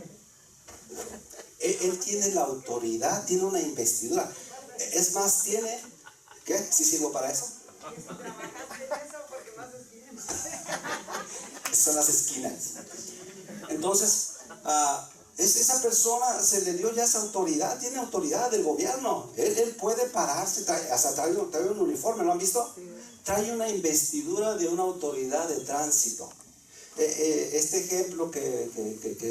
Él tiene la autoridad, tiene una investidura. Es más, tiene... ¿Qué? ¿Sí sirvo para eso? Son las esquinas. Entonces, esa persona se le dio ya esa autoridad, tiene autoridad del gobierno. Él puede pararse, hasta trae un uniforme, ¿lo han visto? Trae una investidura de una autoridad de tránsito. Este ejemplo que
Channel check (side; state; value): both; identical; correlation 1.00